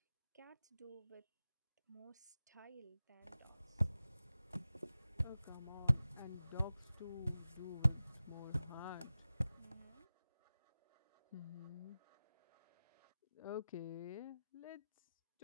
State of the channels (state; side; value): inverted; both; correlation -0.95